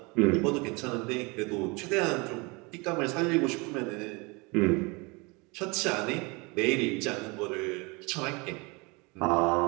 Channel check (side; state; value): left; quieter; 27.6 dB